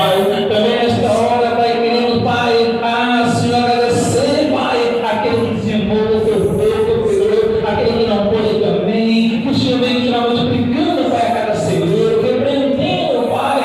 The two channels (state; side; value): identical; both; correlation 1.00